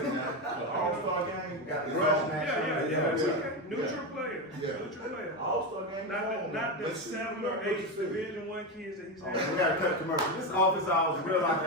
now. All-Star game. We got the Yeah. rush match. Yeah. It's okay. Neutral players. Yeah. Neutral players. All-Star game. Not the Let's see. 7 or 8 Division I kids that he's We had. got to cut commercial. This is office hours. Real life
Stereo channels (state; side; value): normal; both; correlation 0.13